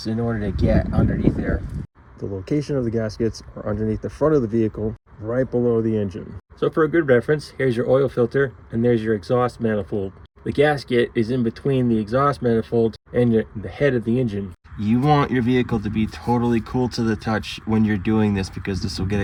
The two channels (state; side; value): identical; both; correlation 1.00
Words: in order to get underneath there. The location of the gaskets are underneath the front of the vehicle, right below the engine. So for a good reference, here's your oil filter, and there's your exhaust manifold. The gasket is in between the exhaust manifold and the head of the engine. You want your vehicle to be totally cool to the touch when you're doing this, because this will get